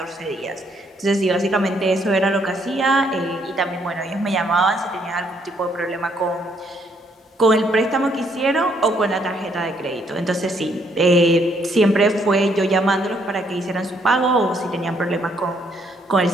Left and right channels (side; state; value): both; normal; correlation 0.70